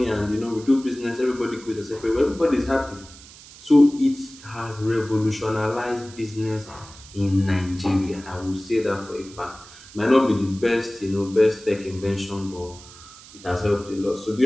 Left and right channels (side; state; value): right; noise; hiss, 19 dB below the sound